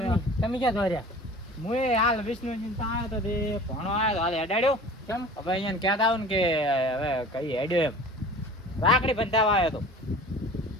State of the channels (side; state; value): both; normal; correlation 0.42